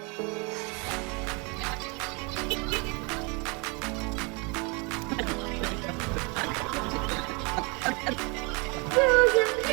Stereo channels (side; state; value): left; quieter; 30.5 dB